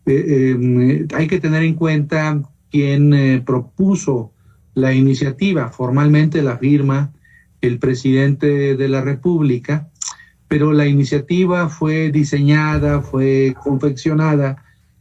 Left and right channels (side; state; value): both; identical; correlation 1.00